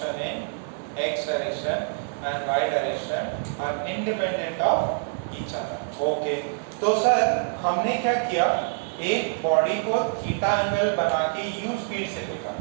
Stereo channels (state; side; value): silent; left; 61 dB below the other